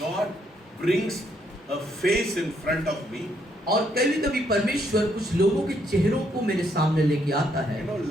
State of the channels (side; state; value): both; normal; correlation 0.72